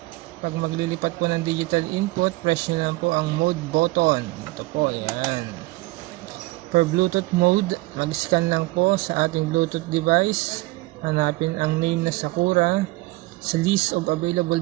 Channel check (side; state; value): left; quieter; 21.2 dB